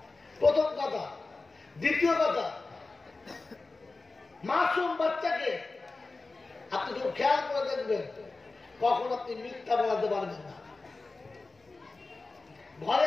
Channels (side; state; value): right; quieter; 3.6 dB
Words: প্রথম কথা। দ্বিতীয় কথা, মাসুম বাচ্চাকে আপনি যখন খেয়াল করে দেখবেন, কখন আপনি মিথ্যা বলাতে পারবেন না। ঘরে